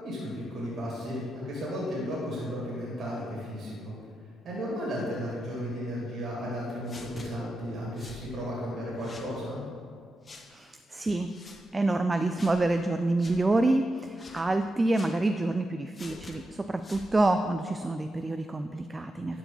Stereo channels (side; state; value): both; normal; correlation 0.88